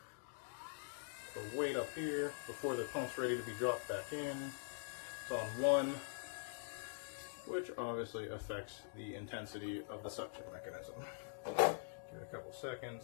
or wait up here before the pump's ready to be dropped back in. It's on 1, which obviously affects the intensity of the suction mechanism. Give it a couple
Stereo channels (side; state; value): right; silent; digital silence